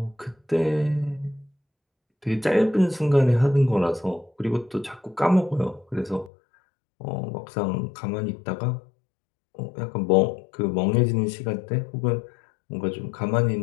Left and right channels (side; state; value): right; drops out; at 6.3 s